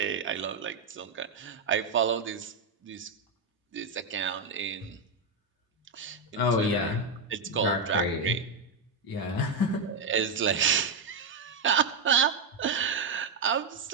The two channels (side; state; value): left; quieter; 4.0 dB